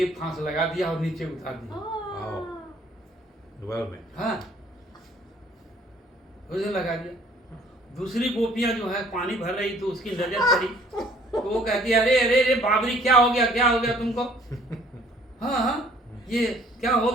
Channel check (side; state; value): both; normal; correlation 0.58